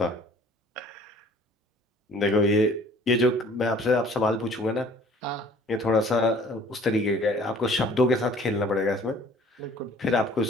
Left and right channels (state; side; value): normal; both; correlation 0.53